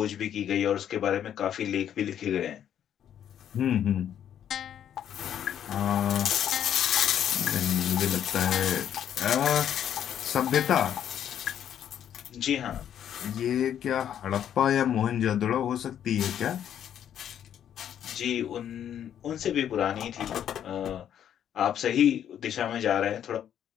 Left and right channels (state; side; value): quieter; right; 9.8 dB